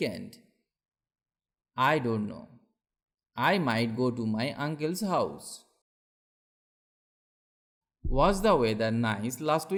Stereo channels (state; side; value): identical; both; correlation 1.00